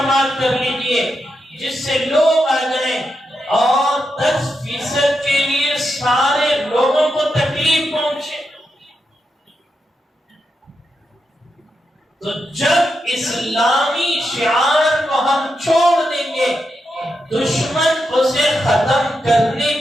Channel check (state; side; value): normal; both; correlation 0.86